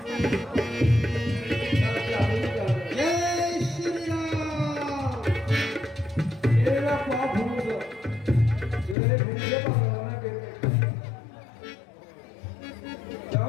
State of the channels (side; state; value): right; drops out; at 9.0 s